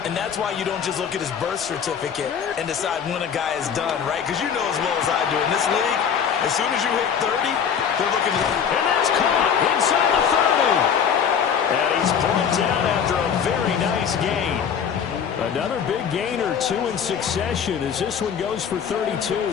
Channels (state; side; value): quieter; right; 7.6 dB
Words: And that's why you don't just look at his birth certificate and decide when a guy is done, right? Because you know as well as I do, in this league, as soon as you hit 30, they're looking to... And that's caught inside the 30. And he's brought down after a very nice gain. Another big gain or two in succession as this one goes for 32.